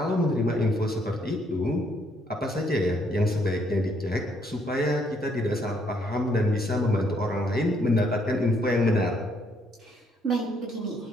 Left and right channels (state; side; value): normal; both; correlation 0.70